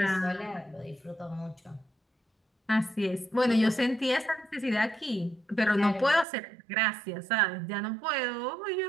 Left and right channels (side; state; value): left; drops out; at 6.2 s